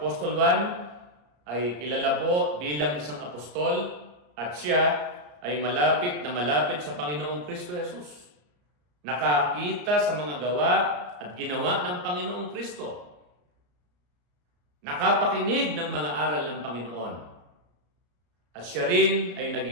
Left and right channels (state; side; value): late; left; 34 ms